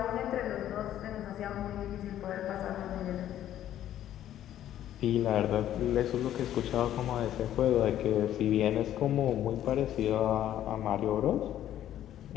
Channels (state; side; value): quieter; right; 11.8 dB